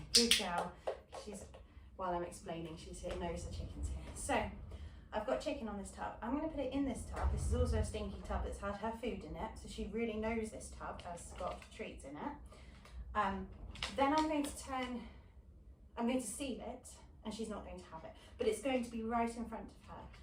good girl, while I'm explaining, she knows the chicken's here. So, I've got chicken on this tub. I'm going to put it in this tub. This is also a stinky tub that's had her food in it, so she really knows this tub has got treats in it. Then I'm going to seal it, and she's not going to have it, but it's going to be right in front of her.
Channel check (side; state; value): both; identical; correlation 1.00